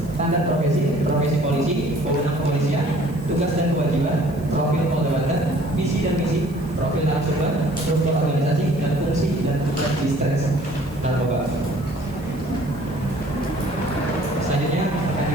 standar profesi, profesi polisi, wewenang kepolisian, tugas dan kewajiban, profil Polda Banten, visi dan misi, profil narasumber, struktur organisasi dan fungsi dan tugas distres narkoba. Selanjutnya akan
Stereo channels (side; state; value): right; noise; hiss, 25 dB below the sound